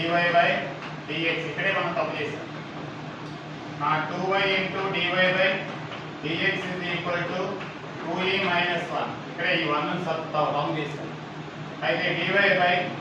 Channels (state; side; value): identical; both; correlation 1.00